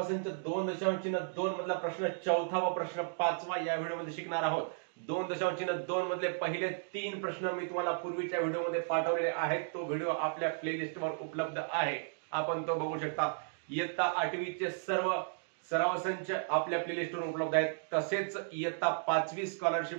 संच 2.2 मधला प्रश्न 4था व प्रश्न 5वा या व्हिडिओमध्ये शिकणार आहोत। 2.2 मधले पहिले 3 प्रश्न मी तुम्हाला पूर्वीच्या व्हिडिओमध्ये पाठवलेले आहेत। तो व्हिडिओ आपल्या प्लेलिस्टवर उपलब्ध आहे, आपण तो बघू शकता। इयत्ता 8वीचे सर्व सराव संच आपल्या प्लेलिस्टवर उपलब्ध आहेत। तसेच इयत्ता 5वी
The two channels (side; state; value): left; silent; digital silence